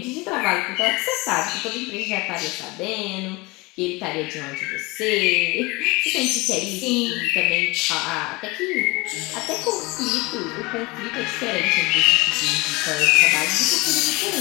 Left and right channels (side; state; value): right; quieter; 24.0 dB